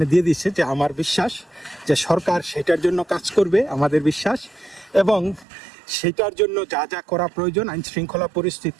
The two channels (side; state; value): left; drops out; at 5.5 s